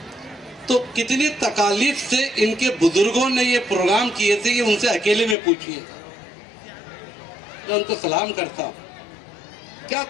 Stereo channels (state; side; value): drops out; right; at 5.4 s